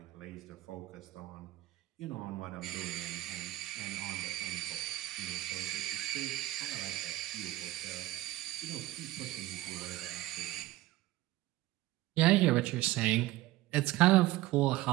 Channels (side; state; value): left; quieter; 17.2 dB